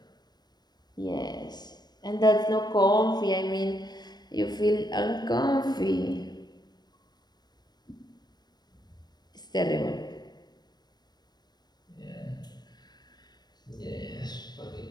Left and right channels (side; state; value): right; late; 0.20 ms